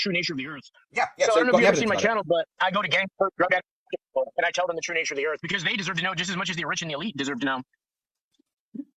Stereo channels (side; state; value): both; identical; correlation 1.00